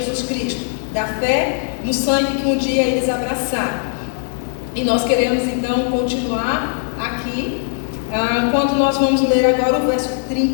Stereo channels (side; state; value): right; silent; digital silence